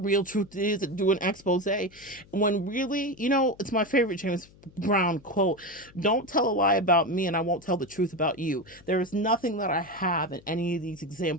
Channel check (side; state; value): left; noise; hum, 25 dB below the sound